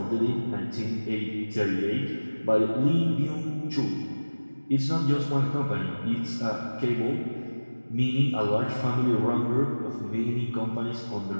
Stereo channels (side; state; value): both; inverted; correlation -1.00